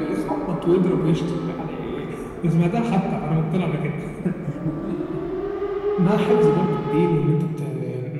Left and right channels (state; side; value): identical; both; correlation 1.00